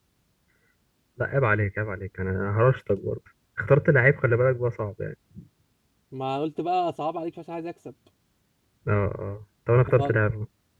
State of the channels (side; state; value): both; identical; correlation 1.00